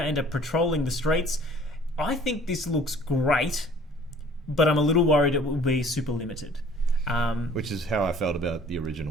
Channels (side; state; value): both; normal; correlation 0.52